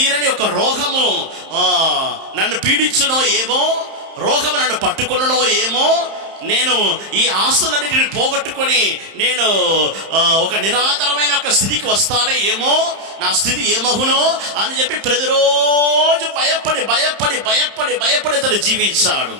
ఒక రోగము నన్ను పీడించునో ఏమో, రోగము నన్ను పట్టుకున్ననో ఏమో, నేను ఈ ఆస్తులన్నింటిని పోగొట్టుకొని నేను ఒక నిరాధారమైన ఒక స్థితికి వస్తానే ఏమో, నా స్థితి ఏమగునో అని చెప్పి ప్రతిరోజు భయపడి అతను జీవించాడు.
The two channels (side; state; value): left; late; 31 ms